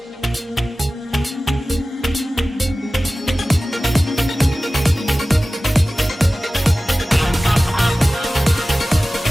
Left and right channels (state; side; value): normal; both; correlation 0.96